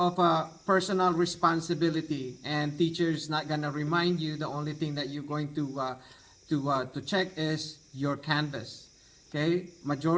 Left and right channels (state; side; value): identical; both; correlation 1.00